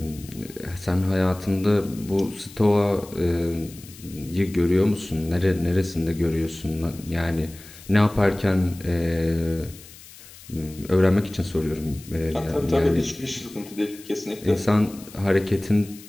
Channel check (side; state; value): left; noise; hiss, 19 dB below the sound